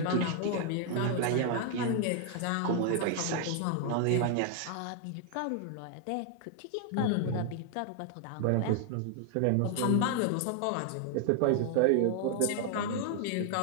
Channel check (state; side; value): different; both; correlation 0.00